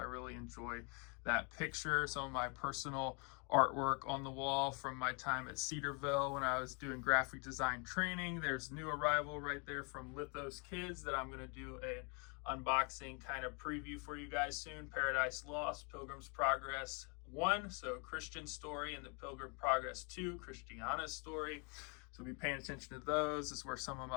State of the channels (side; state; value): right; quieter; 34.8 dB